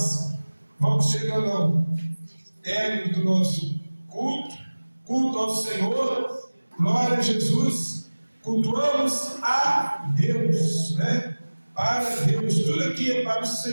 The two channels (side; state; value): both; inverted; correlation -1.00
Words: vamos chegando ao término do nosso culto ao Senhor, glória a Jesus, cultuamos a Deus, né? Para Deus, tudo aqui é para o